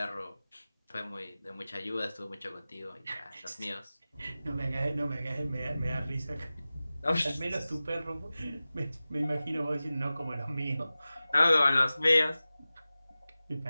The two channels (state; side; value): inverted; both; correlation -0.96